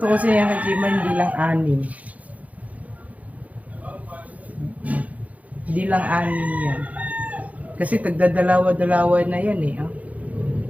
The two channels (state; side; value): late; left; 0.071 ms